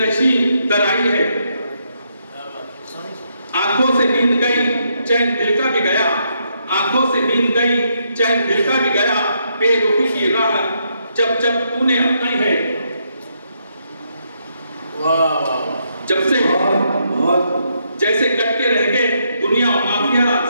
در آئی ہے. آنکھوں سے نیند گئی چین دل کا بھی گیا، آنکھوں سے نیند گئی چین دل کا بھی گیا. بے رخی کی راہ جب جب تو نے اپنائی ہے. جب سے جیسے کٹ کے رہ گئے دنیا و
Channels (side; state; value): both; inverted; correlation -0.77